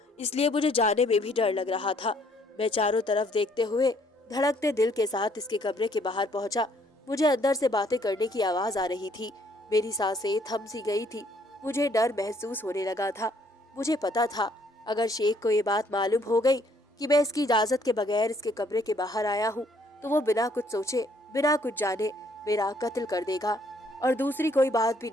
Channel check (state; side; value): normal; both; correlation 0.65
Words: इसलिए मुझे जाने में भी डर लग रहा था। मैं चारों तरफ देखते हुए धड़कते दिल के साथ इसके कमरे के बाहर पहुंचा। मुझे अंदर से बातें करने की आवाज आ रही थी। मेरी सांसें थम सी गई थी। मुझे डर महसूस होने लगा था। मुझे पता था अगर शेख को ये बात मालूम हो गई कि मैं इसकी इजाजत के बगैर इसके कमरे के बाहर आया हूँ तो वो बिना कुछ सोचे बिना कुछ जाने मेरा कत्ल कर देगा और दूसरी कोई बात भी